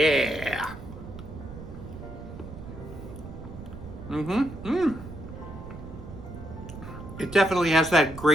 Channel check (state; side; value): noise; right; rumble, 12 dB below the sound